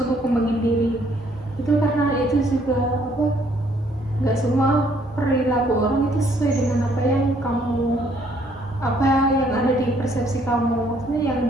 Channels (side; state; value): both; normal; correlation 0.65